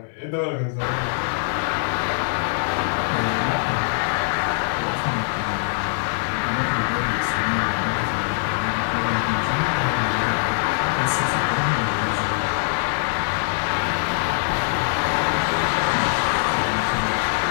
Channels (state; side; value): silent; right; 60 dB below the other